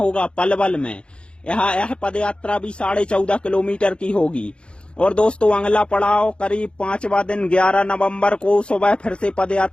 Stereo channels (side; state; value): right; late; 0.056 ms